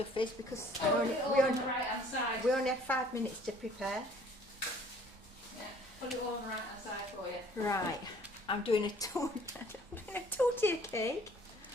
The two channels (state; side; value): normal; both; correlation 0.55